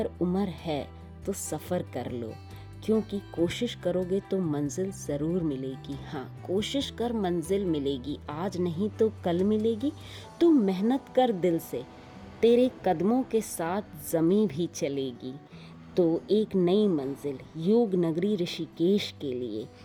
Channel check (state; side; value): identical; both; correlation 1.00